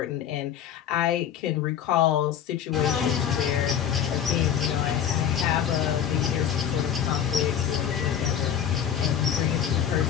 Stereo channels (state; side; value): quieter; right; 9.1 dB